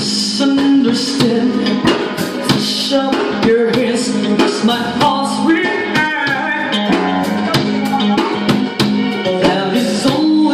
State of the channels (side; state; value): both; identical; correlation 1.00